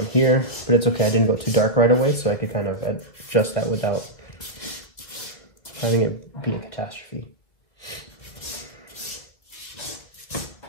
here, but it's okay. I didn't go too dark right away, so I could kind of adjust that without having it be a catastrophe.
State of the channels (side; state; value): right; late; 2.0 ms